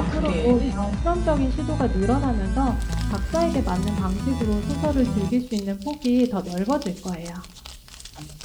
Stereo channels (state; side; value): identical; both; correlation 1.00